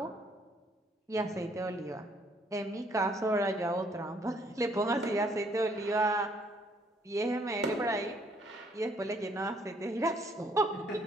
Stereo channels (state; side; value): normal; both; correlation 0.66